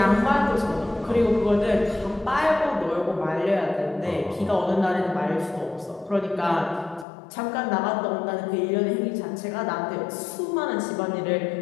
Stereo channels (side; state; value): right; drops out; at 7.1 s